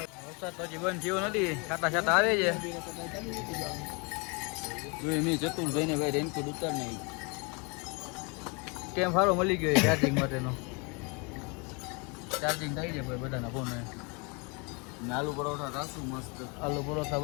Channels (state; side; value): quieter; right; 31.6 dB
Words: વરસાદ તો હજી બંધ થયો નથી, છાતા છાતા આવે છે. જોઈએ મેં ચતુરભાઈ ને ભાઈ રેનકોટ ઉતાર નહીં. કેમ સારો મળી ગયો ચાર્જિંગ માટેનો. ચાર્જિંગ થઈ જાય ભાઈ બધાના ફોન. આલુ પરોઠા રાખશું મસ્ત. આલુ પરોઠા